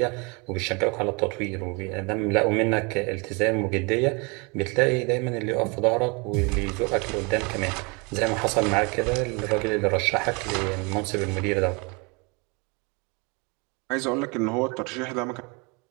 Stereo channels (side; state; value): left; quieter; 30.0 dB